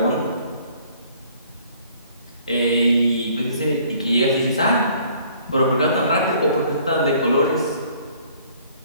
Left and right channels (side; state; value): both; inverted; correlation -0.58